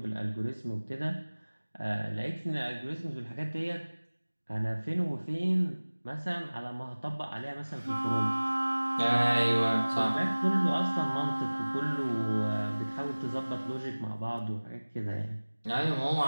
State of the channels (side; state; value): both; inverted; correlation -1.00